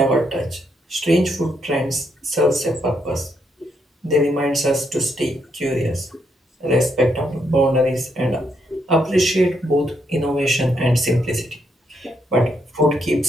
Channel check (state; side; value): normal; both; correlation 0.77